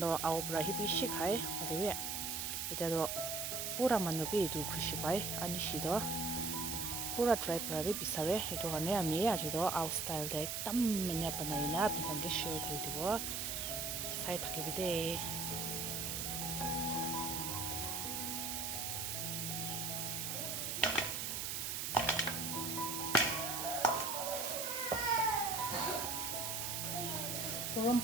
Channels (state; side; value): noise; right; hiss, 2 dB below the sound